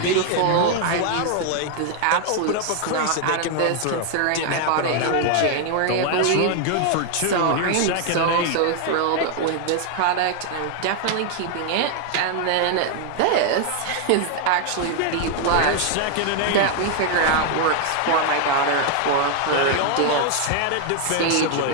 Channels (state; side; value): different; both; correlation 0.00